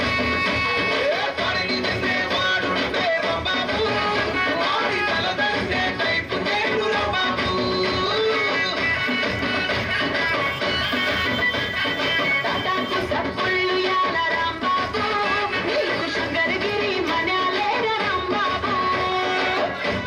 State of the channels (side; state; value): both; identical; correlation 1.00